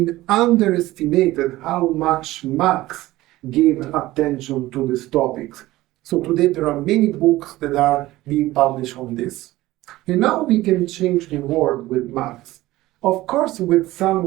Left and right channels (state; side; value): quieter; left; 17.3 dB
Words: underestimated how much Marx gave attention to these topics. So today there are many books that are being published on this. And now we can change the world with Marx. Of course, with